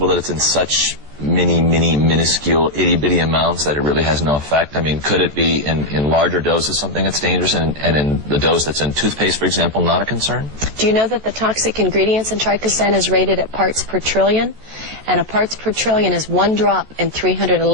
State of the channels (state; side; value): late; left; 14 ms